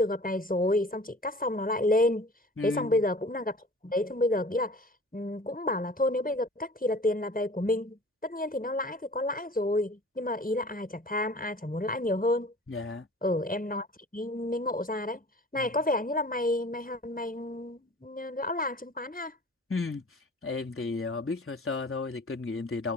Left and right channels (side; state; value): both; normal; correlation 0.45